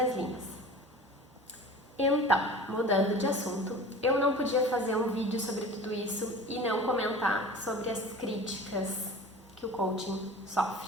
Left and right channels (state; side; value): normal; both; correlation 0.39